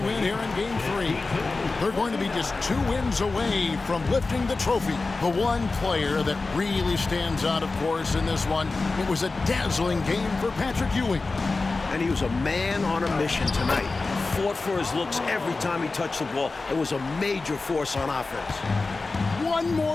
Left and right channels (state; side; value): quieter; right; 3.7 dB